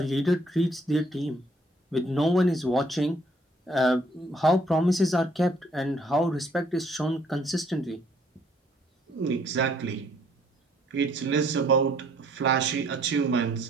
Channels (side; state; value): both; normal; correlation 0.64